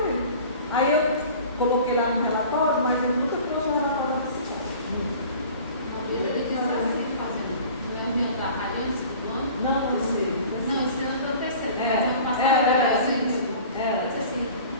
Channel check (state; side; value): inverted; both; correlation -0.44